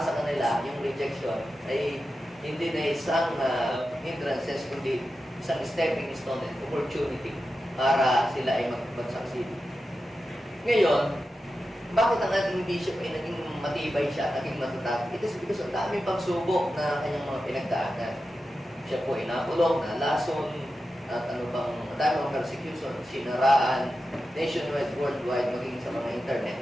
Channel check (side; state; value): both; normal; correlation 0.91